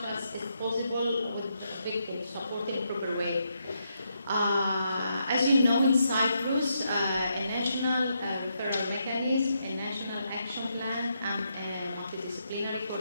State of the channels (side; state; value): both; inverted; correlation -0.80